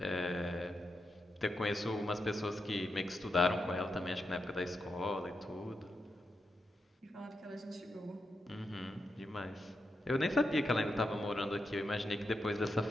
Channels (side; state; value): both; normal; correlation 0.86